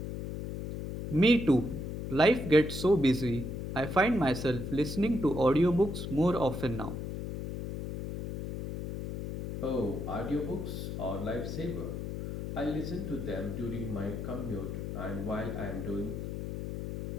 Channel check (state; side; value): noise; left; hum, 6 dB below the sound